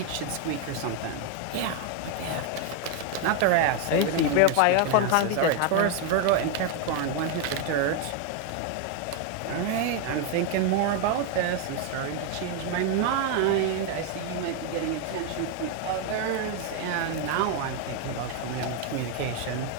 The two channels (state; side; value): different; both; correlation 0.01